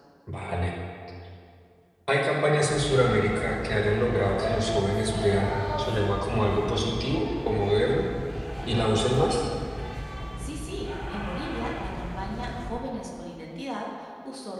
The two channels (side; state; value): both; identical; correlation 1.00